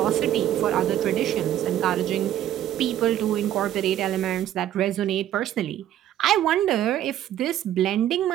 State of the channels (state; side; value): quieter; left; 11.9 dB